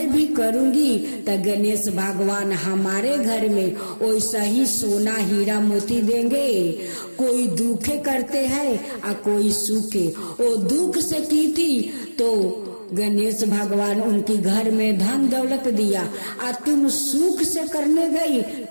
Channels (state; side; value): inverted; both; correlation -1.00